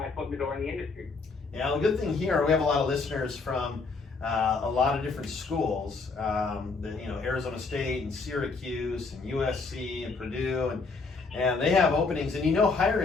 foot in the door in the industry. Yeah, the good thing here, we have a lot of listeners from a lot of different schools, Arizona State and Syracuse and USC and Purdue, and they have openings. And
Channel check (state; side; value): quieter; right; 4.2 dB